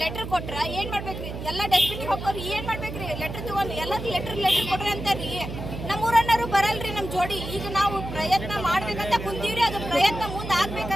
ಲೆಟರ್ ಕೊಟ್ರ ಏನ್ ಮಾಡ್ಬೇಕ್ರಿ? ಎಲ್ಲ ಡಸ್ಟ್ಬಿನ್ ಹೋಗೋರು ಏನ್ ಮಾಡ್ಬೇಕ್ರಿ? ಲೆಟರ್ ತಗೊಂಡು ಎಲ್ಲದಕ್ಕೂ ಲೆಟರ್ ಕೊಡ್ರಿ ಅಂತಾರ್ರಿ. ನಮ್ಮ ಊರನ್ನರು ಬರಲ್ರಿ ನಮ್ ಜೋಡಿ. ಈಗ ನಾವು ಪ್ರಯತ್ನ ಮಾಡ್ಬೇಕಂತ ಕುಂತೀವ್ರಿ, ಅದು ಪ್ರಯತ್ನ ಮುಂದೆ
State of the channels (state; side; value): noise; right; hum, 8 dB below the sound